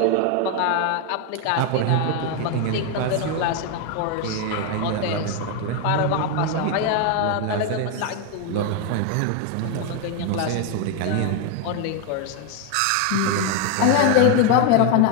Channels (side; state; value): both; different; correlation 0.01